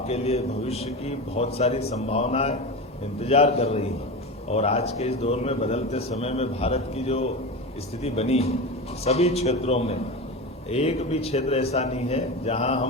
लिए भविष्य की बहुत सारी संभावनाएं इंतजार कर रही हैं और आज के इस दौर में बदलते समय में भारत की जो स्थिति बनी है, सभी क्षेत्रों में एक भी क्षेत्र ऐसा नहीं है जहां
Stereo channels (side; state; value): both; normal; correlation 0.24